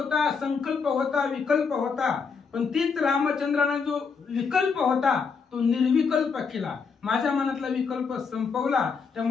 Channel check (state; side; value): quieter; right; 5.5 dB